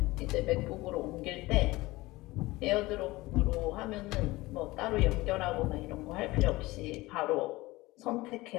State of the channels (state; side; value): quieter; right; 20.1 dB